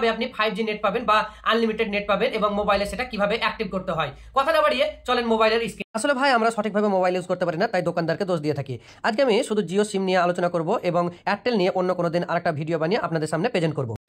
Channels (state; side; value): identical; both; correlation 1.00